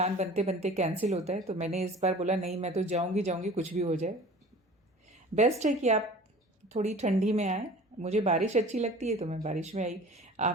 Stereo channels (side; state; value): both; normal; correlation 0.43